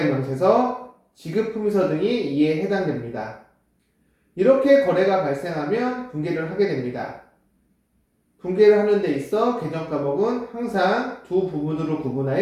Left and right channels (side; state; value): both; identical; correlation 1.00